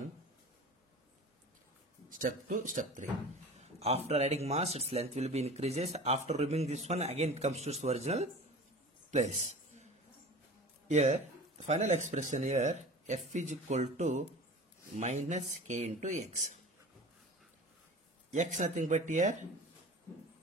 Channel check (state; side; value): normal; both; correlation 0.37